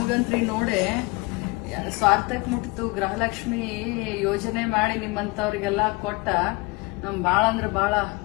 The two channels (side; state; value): right; quieter; 25.3 dB